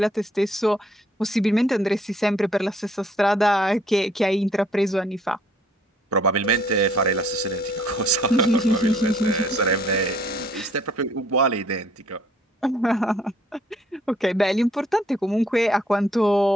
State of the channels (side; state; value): both; normal; correlation 0.62